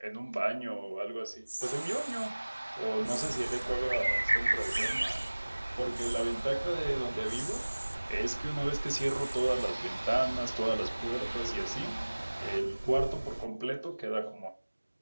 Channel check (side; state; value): both; inverted; correlation -1.00